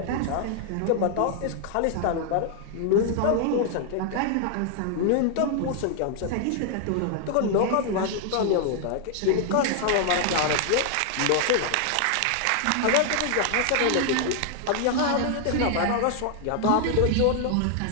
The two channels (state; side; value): different; both; correlation 0.00